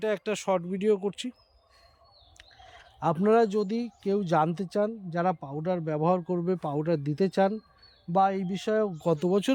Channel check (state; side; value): identical; both; correlation 1.00